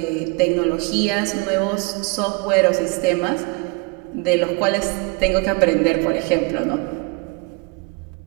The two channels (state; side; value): quieter; left; 30.7 dB